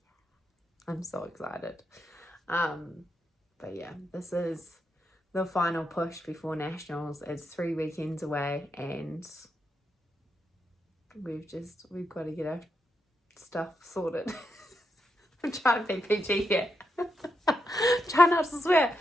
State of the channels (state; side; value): normal; both; correlation 0.83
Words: I'm so excited. But yeah, this is the final push before nationals. It's 3 weekends away, and we've got to get our stuff sorted. I'm trying to be PG here. Try not to swear.